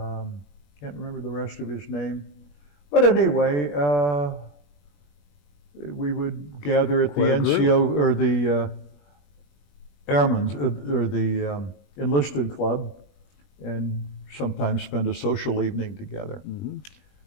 remember the rest of his name. But anyway, we would gather at the NCO, or the Airmen's, or the enlisted club, and sometimes spend a social evening together.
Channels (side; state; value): right; late; 21 ms